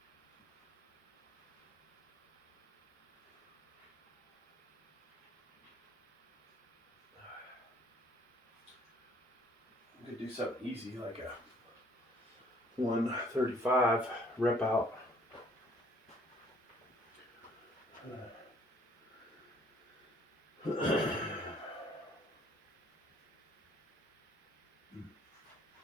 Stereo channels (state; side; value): normal; both; correlation 0.60